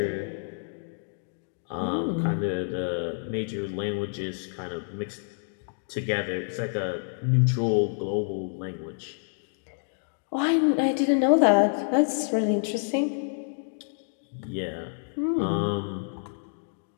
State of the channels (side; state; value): right; silent; digital silence